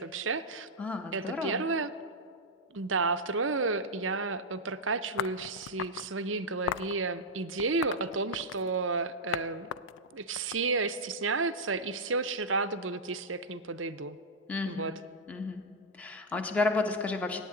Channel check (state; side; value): normal; both; correlation -0.03